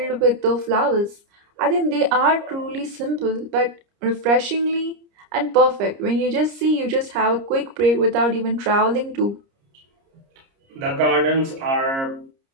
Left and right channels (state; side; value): late; left; 30 ms